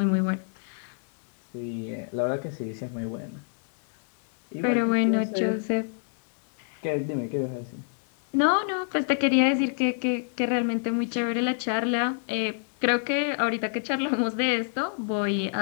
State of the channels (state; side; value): silent; right; digital silence